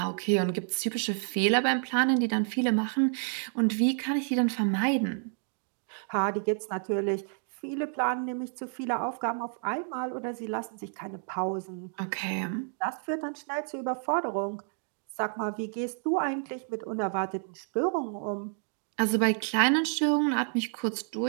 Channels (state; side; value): silent; left; 56 dB below the other